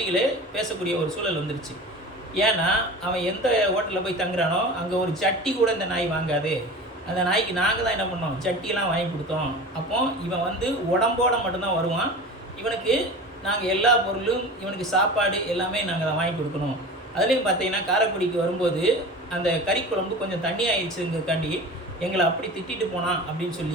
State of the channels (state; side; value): normal; both; correlation 0.35